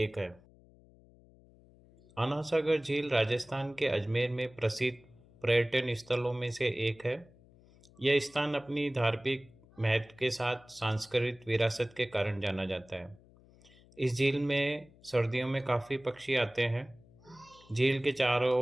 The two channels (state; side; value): noise; left; hum, 26 dB below the sound